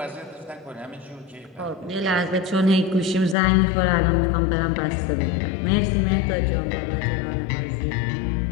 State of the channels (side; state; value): right; drops out; at 3.4 s